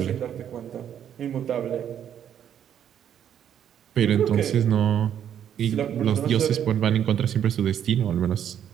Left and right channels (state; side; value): quieter; left; 9.5 dB